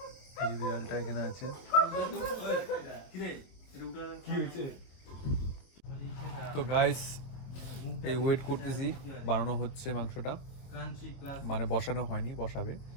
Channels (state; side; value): late; right; 23 ms